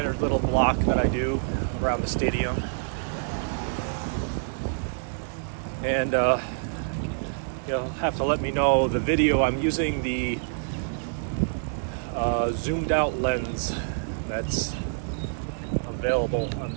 little block that I do around the stadium. And you'll have to let me know the video. I'm using the zoomed out lens that's available on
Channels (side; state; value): left; silent; digital silence